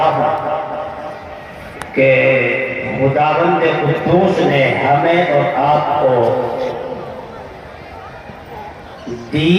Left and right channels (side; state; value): both; identical; correlation 1.00